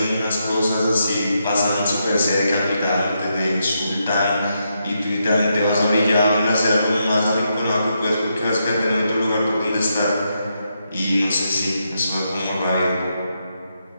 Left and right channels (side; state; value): both; inverted; correlation -0.82